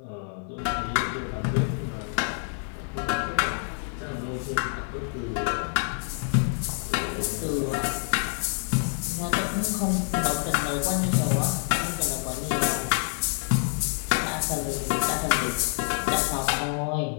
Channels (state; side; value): silent; right; digital silence